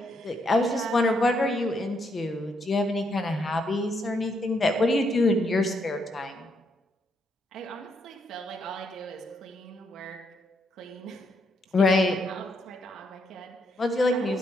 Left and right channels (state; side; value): normal; both; correlation 0.76